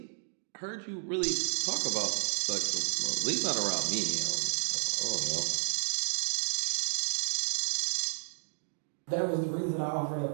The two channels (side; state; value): left; silent; digital silence